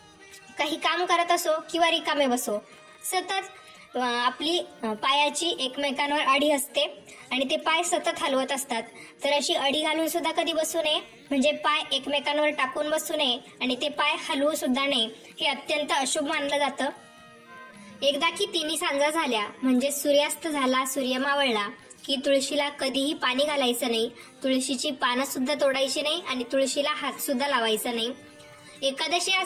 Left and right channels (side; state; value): both; identical; correlation 1.00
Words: काही काम करत असो किंवा रिकामे बसो, सतत आपली पायाची एकमेकांवर अडी असते आणि ते पाय सतत हलवत असतात. तर अशी अडी घालून सुद्धा कधी बसू नये, म्हणजे पाय एकमेकांवर टाकून बसू नये आणि ते पाय हलवू सुद्धा नये. हे अत्यंत अशुभ मानलं जातं. एकदा की तिन्ही सांजा झाल्या म्हणजे सूर्यास्त झाला, सूर्य मावळला की तुळशीला कधीही पाणी घालायचं नाही. तुळशीची पानं सुद्धा तोडायची नाही आणि तुळशीला हात सुद्धा लावायचा नाही. एकादशी